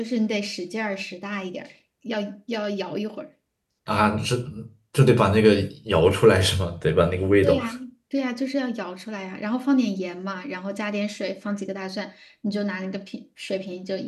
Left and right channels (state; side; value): identical; both; correlation 1.00